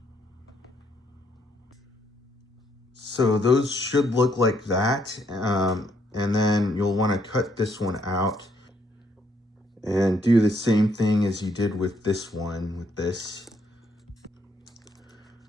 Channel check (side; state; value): both; normal; correlation 0.72